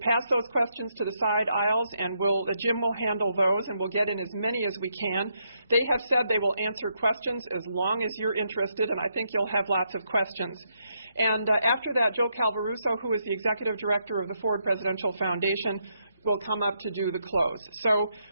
those questions to the side aisles, and Jim will handle those, and we'll get in as many as we can. They have said they will answer questions as long as you're interested, and I think you'll have lots of questions. And after that, Joe Calvaruso, who is the Executive Director of the Ford Presidential Foundation, will come up to do the close. So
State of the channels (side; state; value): both; inverted; correlation -0.78